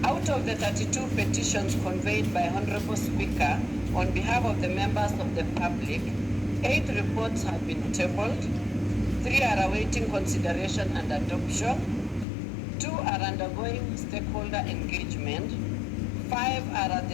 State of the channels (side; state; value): right; drops out; at 12.2 s